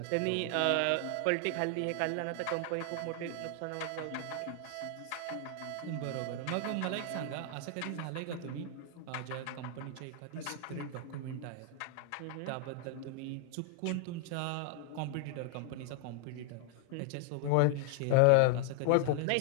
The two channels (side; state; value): both; different; correlation 0.00